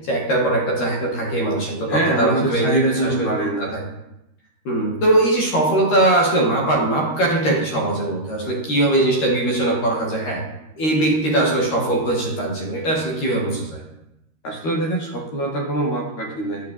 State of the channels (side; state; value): right; late; 13 ms